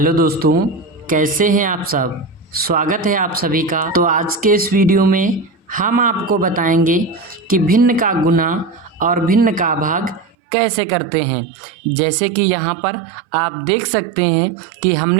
दोस्तों, कैसे हैं आप सब। स्वागत है आप सभी का। तो आज के इस वीडियो में हम आपको बताएंगे कि भिन्न का गुना और भिन्न का भाग कैसे करते हैं। जैसे कि यहाँ पर आप देख सकते हैं कि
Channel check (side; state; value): left; drops out; at 10.4 s